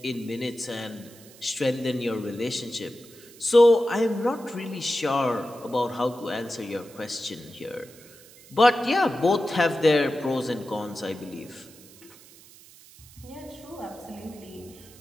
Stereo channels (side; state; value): right; noise; hiss, 22 dB below the sound